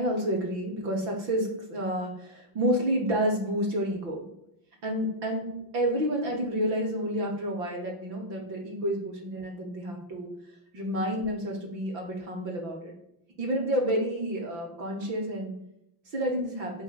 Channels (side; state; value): left; late; 6.0 ms